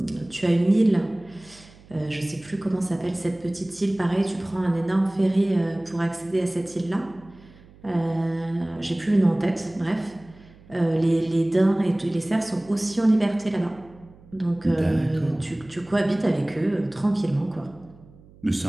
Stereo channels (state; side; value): noise; right; hum, 24 dB below the sound